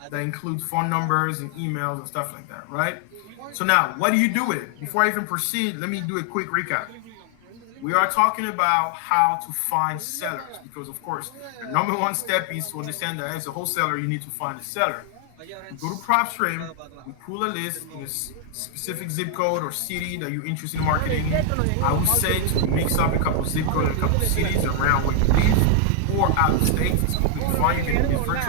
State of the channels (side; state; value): both; different; correlation 0.00